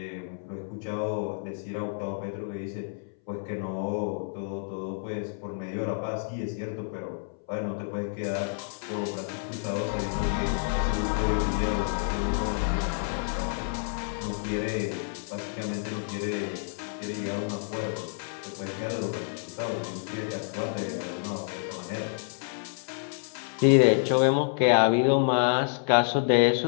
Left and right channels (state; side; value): silent; right; 59 dB below the other